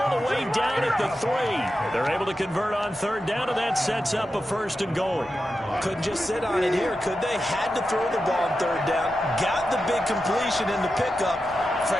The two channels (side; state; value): both; normal; correlation 0.90